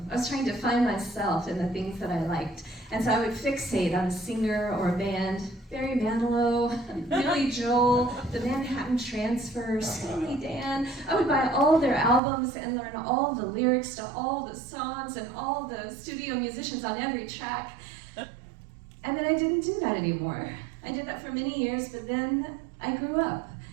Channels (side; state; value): left; drops out; at 12.2 s